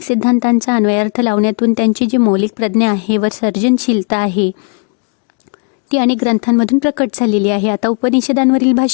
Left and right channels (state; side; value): quieter; right; 38.0 dB